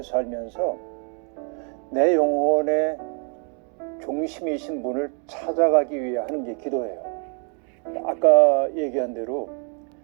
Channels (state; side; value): quieter; left; 39.0 dB